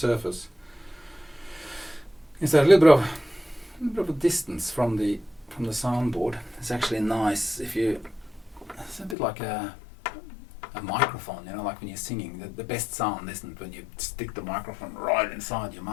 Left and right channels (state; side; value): drops out; right; at 9.2 s